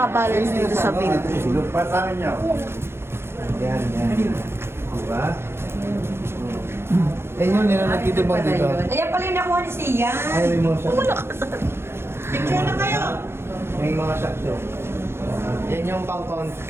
dito sa bed. Patangan niyo. Yan, yan. Diba? Yan yun, nila nagtitibang dito. Ayan pala yung nakuha ni Sia. Ay, may mga shock. Picture na kayo. May mga shock show. Yan yung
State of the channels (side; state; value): left; late; 0.12 ms